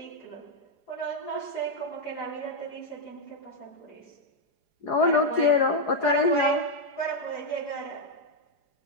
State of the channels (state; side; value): late; right; 4.9 ms